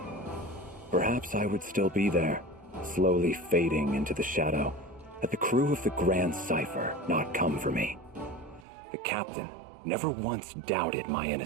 Perhaps I would still be there, slowly fading into the shadow, had the crew of the Grand Cipher not come for me. The captain never once doubted my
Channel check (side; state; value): left; drops out; at 8.7 s